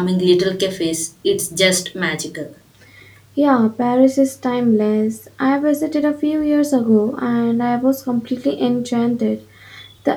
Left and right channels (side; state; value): both; identical; correlation 1.00